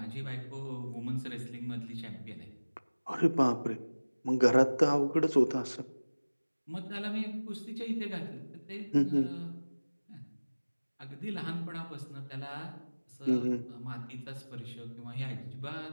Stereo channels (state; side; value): inverted; both; correlation -1.00